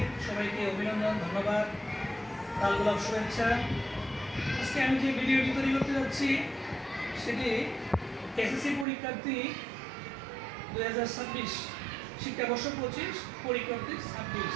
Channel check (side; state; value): left; drops out; at 8.8 s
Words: সবাইকে অভিনন্দন, ধন্যবাদ, লাল গোলাপ শুভেচ্ছা। আজকে আমি যে ভিডিওটি তৈরি করতে যাচ্ছি সেটি এসএসসি পরীক্ষার্থী 2026 শিক্ষাবর্ষ 25 পরীক্ষার্থী 26।